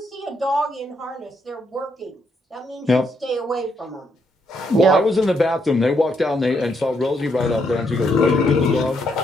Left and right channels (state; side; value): normal; both; correlation 0.76